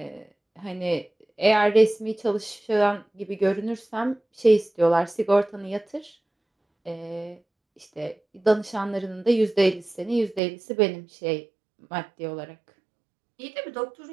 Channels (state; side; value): drops out; left; at 10.4 s